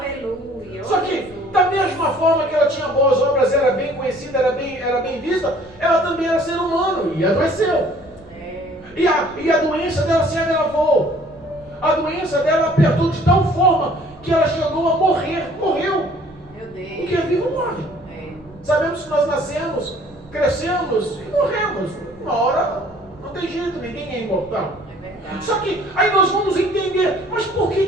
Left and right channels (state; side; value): noise; right; rumble, 25 dB below the sound